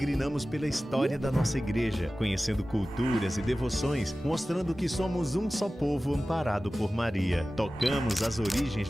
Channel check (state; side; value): normal; both; correlation 0.96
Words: pela história da nossa igreja, conhecendo culturas e devoções, mostrando que somos um só povo amparado por Maria. Tocamos as origens